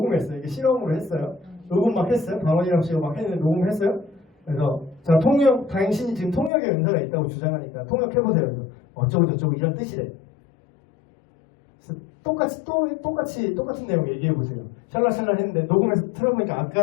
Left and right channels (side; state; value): right; drops out; at 6.5 s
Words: 이게 실험으로 했어요. 녹음 막 했어요. 방언이라고 치고 막 했는데 녹음했어요. 그래서 자 통역 당신이 지금 통역의 은사가 있다고 주장하니까 통역해보세요. 그래서 어쩌고 저쩌고 이런 뜻이래. 그래서 똑같은 내용 얘기해보세요. 샬라샬라 했는데 녹음해서 틀어보니까